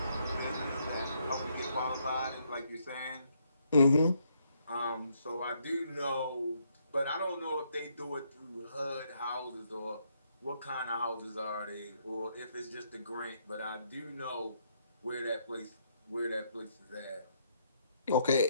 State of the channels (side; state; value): both; inverted; correlation -0.73